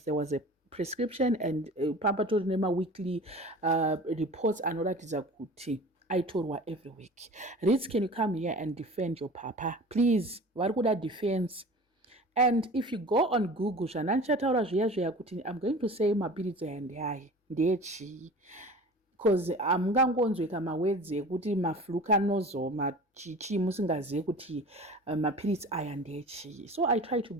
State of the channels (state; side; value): normal; both; correlation 0.40